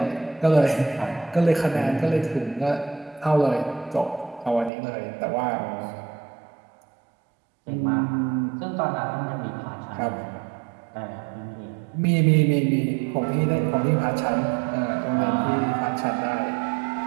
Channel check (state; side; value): drops out; left; at 4.7 s